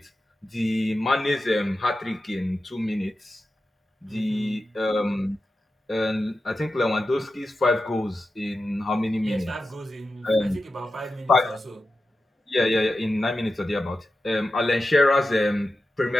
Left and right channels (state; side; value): normal; both; correlation 0.91